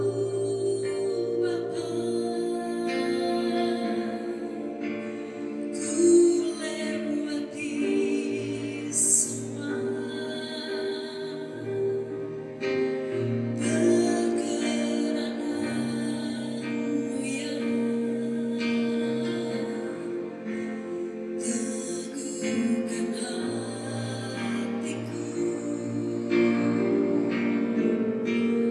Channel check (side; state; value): both; identical; correlation 1.00